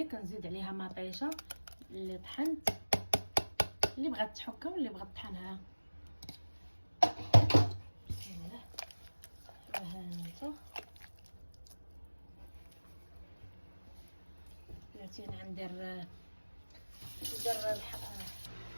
كنزيد عليها مطيشه اللي طحنت، اللي بغات تحكها واللي بغات تطحنها. بسم الله. ها انت بلاتي ندير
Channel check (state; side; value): inverted; both; correlation -1.00